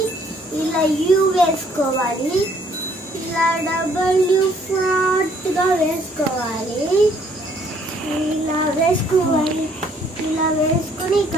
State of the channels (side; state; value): both; normal; correlation 0.63